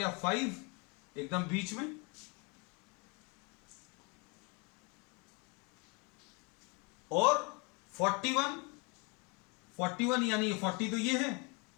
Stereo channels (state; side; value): quieter; right; 31.1 dB